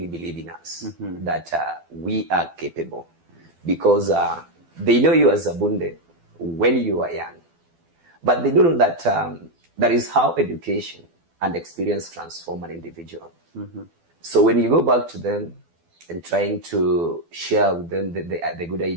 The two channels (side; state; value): left; late; 12 ms